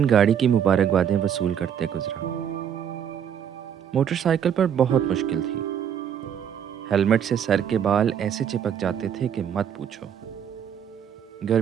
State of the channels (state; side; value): quieter; left; 8.6 dB